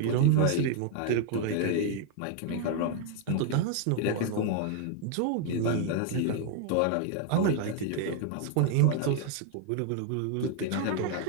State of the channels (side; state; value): both; different; correlation 0.00